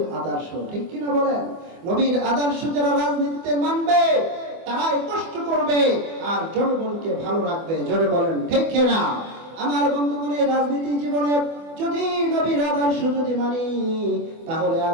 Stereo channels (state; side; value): late; left; 24 ms